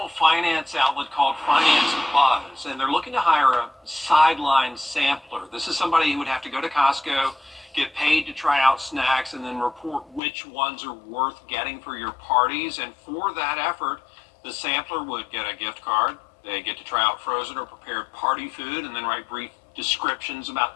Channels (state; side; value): drops out; right; at 10.2 s